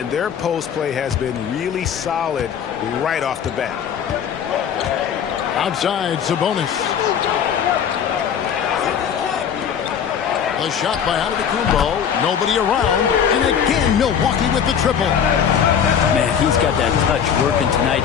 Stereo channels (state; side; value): quieter; right; 8.0 dB